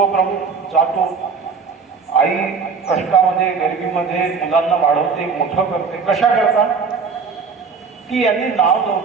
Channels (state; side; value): quieter; left; 5.3 dB